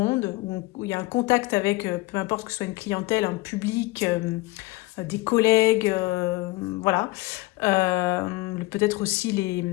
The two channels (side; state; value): right; quieter; 21.1 dB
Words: où il y a un contact avec, peu importe que ce soit une clientèle, un public, des collègues, voilà. Peut-être aussi